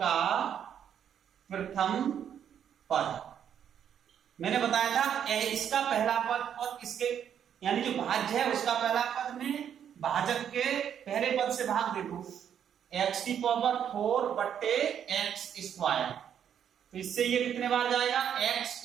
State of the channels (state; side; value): quieter; left; 8.9 dB